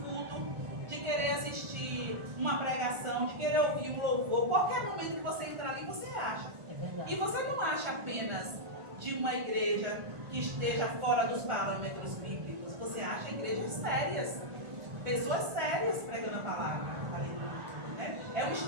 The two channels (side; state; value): left; late; 1.4 ms